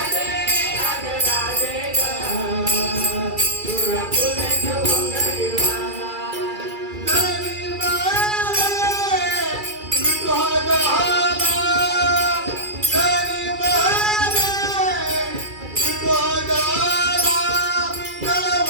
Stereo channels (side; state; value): left; late; 2.3 ms